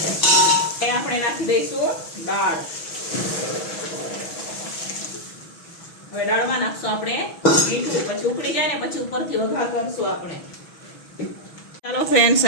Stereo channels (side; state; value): right; late; 6.1 ms